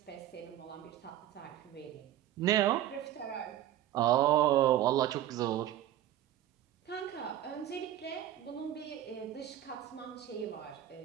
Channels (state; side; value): quieter; left; 12.3 dB